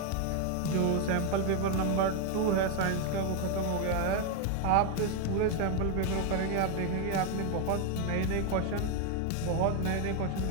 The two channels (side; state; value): both; different; correlation 0.01